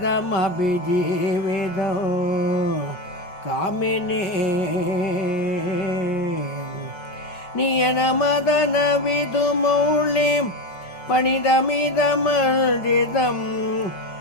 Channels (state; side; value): late; right; 5.5 ms